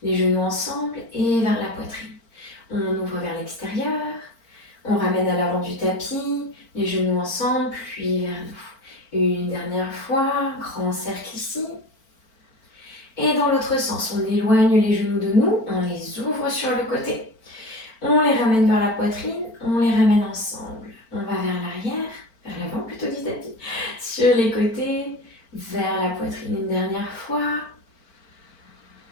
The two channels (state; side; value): late; right; 4.4 ms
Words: les genoux ensemble et vers la poitrine. On ouvre vers l'extérieur, on ramène à l'avant du tapis, les genoux ensemble, puis vers nous. Une dernière fois, grand cercle ici. Et dans l'autre sens, on éloigne les genoux de nous, on les ouvre sur le côté. On les ramène vers la poitrine, on les ramène ensemble. On va vers l'arrière, vers l'avant plutôt du tapis, sur les côtés, vers la poitrine une dernière fois.